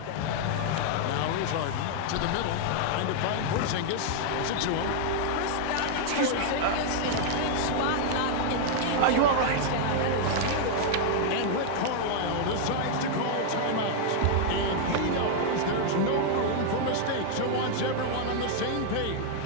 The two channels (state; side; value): different; both; correlation 0.00